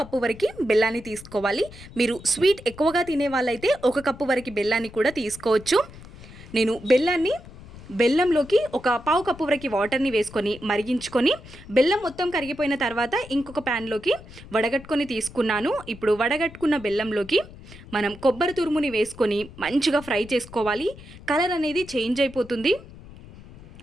కప్పు వరకు బెల్లాన్ని తీసుకోవాలి. మీరు స్వీట్ ఎక్కువగా తినే వాళ్ళైతే ఒక కప్పు వరకు బెల్లాన్ని కూడా తీసుకోవచ్చు. నేను బెల్లంలోకి ఒక పావు కప్పు వరకు వాటర్ని వేసుకొని మరిగించుకొని బెల్లం మొత్తం కరిగిపోయిన తర్వాత ఇంకొక ప్యాన్లోకి వడగట్టుకొని తీసుకున్నాను. ఇప్పుడు వడగట్టుకున్న బెల్లంలోకి మనం కొబ్బరి తురుముని వేసుకొని మంచిగా ఫ్రై చేసుకోవాలి. కలర్ అనేది చేంజ్ అయిపోతుంది.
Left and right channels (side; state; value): left; noise; rumble, 18 dB below the sound